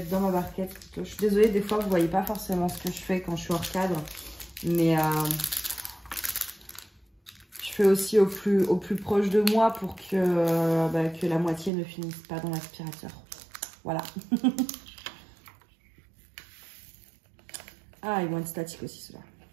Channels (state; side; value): drops out; left; at 11.7 s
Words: être dans ma barquette. Je suis désolée, des fois, vous voyez pas forcément ce que je fais quand je suis hors cadre. Mais je fais aussi au plus proche de moi pour que la moitié ne finisse pas dans l'aspirateur. Voilà. Ah, ils vont être statiques aussi, ceux-là.